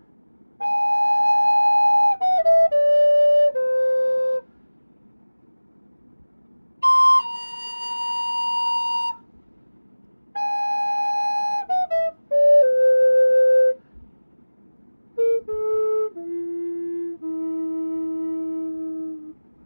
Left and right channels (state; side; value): inverted; both; correlation -1.00